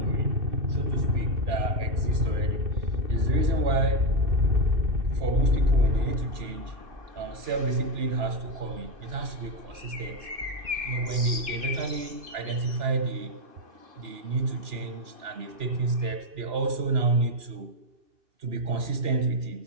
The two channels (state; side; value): late; left; 2.9 ms